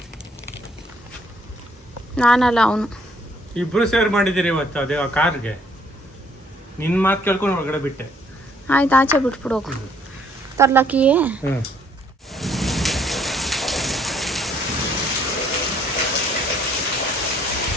ನಾನಲ್ಲ ಅವನು. ಇಬ್ರು ಸೇರ್ ಮಾಡಿದ್ದೀರಿ ಇವತ್ತು ಅದೇ ಆ ಕಾರ್ಗೆ. ನಿನ್ನ ಮಾತು ಕೇಳ್ಕೊಂಡು ಒಳಗಡೆ ಬಿಟ್ಟೆ. ಆಯ್ತು, ಆಚೆ ಬಿಟ್ಬಿಡು ಹೋಗು. ತರ್ಲಕ್ಕಿಯೇ ಹ್ಞೂ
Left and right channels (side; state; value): both; normal; correlation 0.64